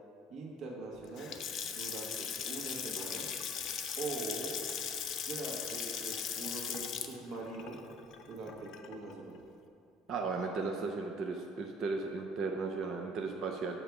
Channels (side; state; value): both; normal; correlation 0.52